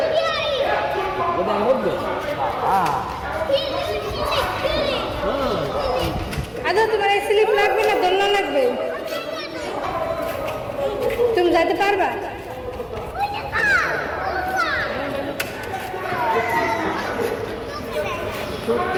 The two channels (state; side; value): identical; both; correlation 1.00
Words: আদৌ তোমার স্লিপ লাগবে না দোলনা লাগবে? তুমি যেতে পারবা?